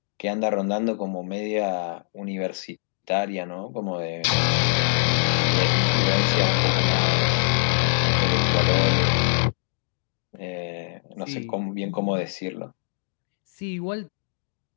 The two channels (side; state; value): right; silent; digital silence